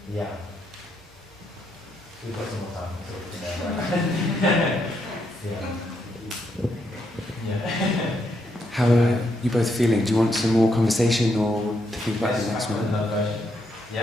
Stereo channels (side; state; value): both; normal; correlation 0.78